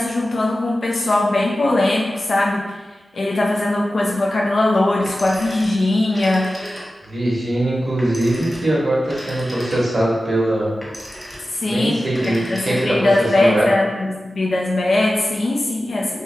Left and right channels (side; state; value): both; normal; correlation 0.94